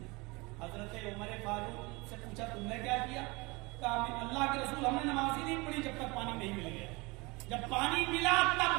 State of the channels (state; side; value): quieter; left; 25.4 dB